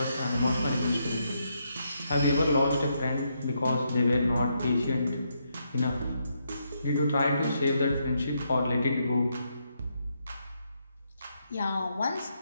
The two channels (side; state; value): both; inverted; correlation -0.79